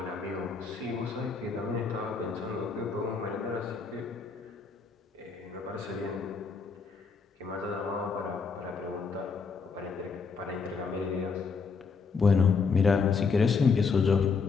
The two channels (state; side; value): quieter; right; 5.0 dB